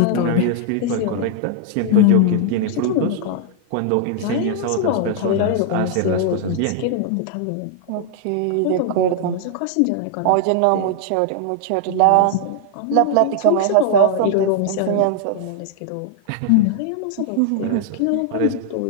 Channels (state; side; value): different; both; correlation 0.00